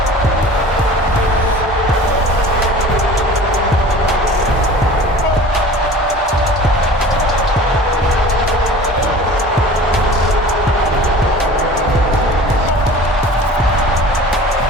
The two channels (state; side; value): normal; both; correlation 0.41